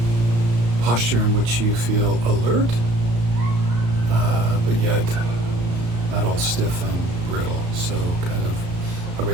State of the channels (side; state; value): left; late; 34 ms